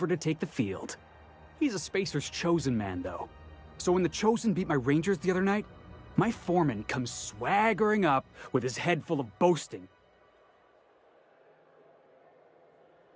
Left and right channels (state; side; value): identical; both; correlation 1.00